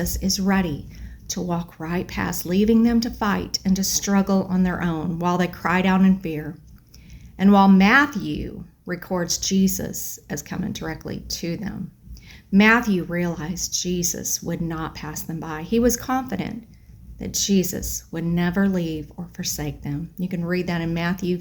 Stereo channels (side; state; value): both; identical; correlation 1.00